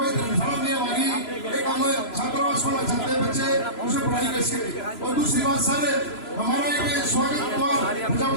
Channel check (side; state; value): right; late; 3.0 ms